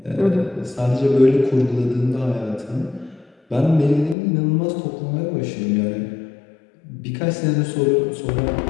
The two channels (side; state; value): right; drops out; at 4.2 s